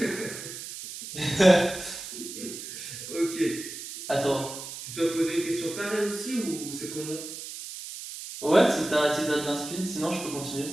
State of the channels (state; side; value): noise; right; hiss, 10 dB below the sound